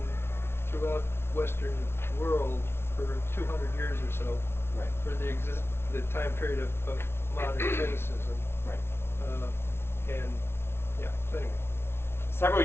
throughout Western world for 200 years or so, Right. for the time period of modern cynicism. Right. And yeah, so anyway. Several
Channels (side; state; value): right; late; 0.12 ms